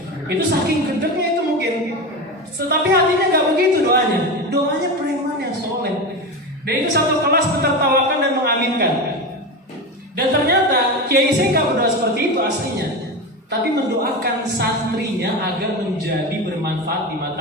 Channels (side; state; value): both; normal; correlation 0.22